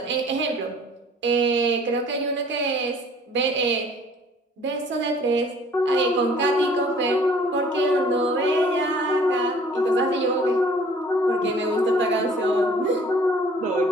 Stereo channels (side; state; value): both; normal; correlation 0.53